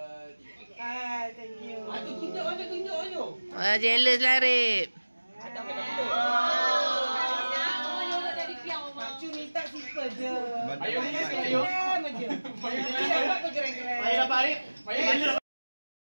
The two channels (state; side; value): inverted; both; correlation -1.00